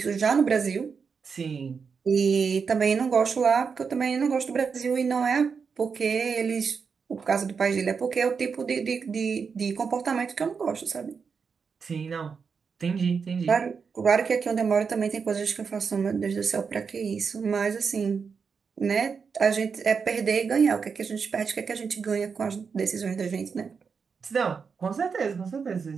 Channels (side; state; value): left; quieter; 5.7 dB